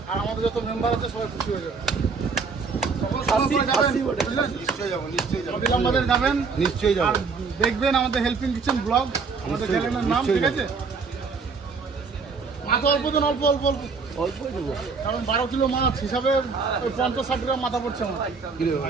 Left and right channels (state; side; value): quieter; left; 4.9 dB